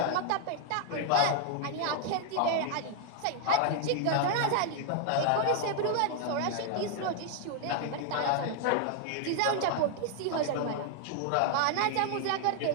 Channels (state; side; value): different; both; correlation 0.00